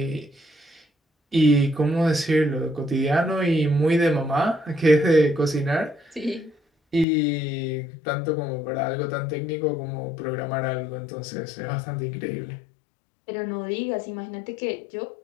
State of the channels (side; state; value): right; drops out; at 7.1 s